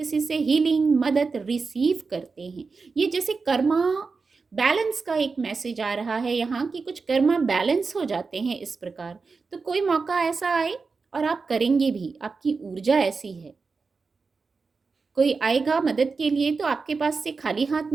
से हीलिंग मदद रिसीव करते हैं। ये जैसे कर्मा बैलेंस का एक मैसेज आ रहा है यहाँ, कि कुछ कर्मा बैलेंस हो जाते हैं इस प्रकार। तो कोई मौका ऐसा आए और आप करेंगे भी, आपकी ऊर्जा ऐसी है। कोई आएगा मदद के लिए तो आपके पास से खाली हाथ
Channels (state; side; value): quieter; left; 4.5 dB